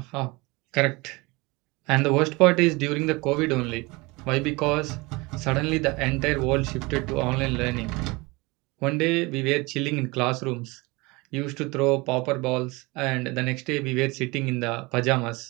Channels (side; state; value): left; quieter; 24.5 dB